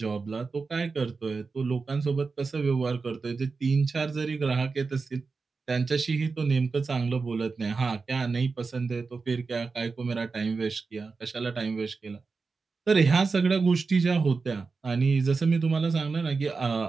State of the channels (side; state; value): left; quieter; 4.5 dB